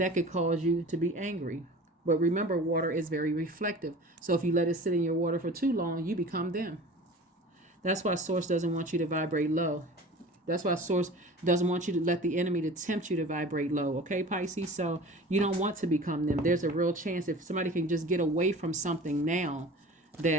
could cause you to be angry. But remember, water is very reflective. So if you let it sit in your water for too long, you become them. That's why Source doesn't want you to vibrate low. That's why Source doesn't want you to let the enemy to tempt you to vibrate low. Okay, Pisces? So you don't want to become them. There's a real chance if somebody can just get away from something now,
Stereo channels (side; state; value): both; normal; correlation 0.40